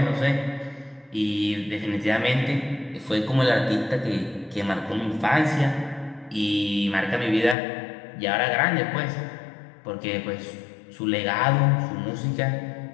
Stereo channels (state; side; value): drops out; right; at 7.6 s